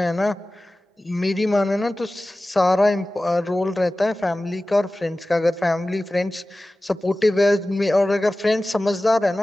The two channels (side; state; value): both; normal; correlation 0.96